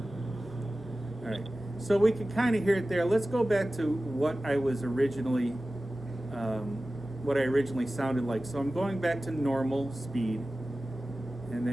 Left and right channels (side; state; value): both; normal; correlation 0.96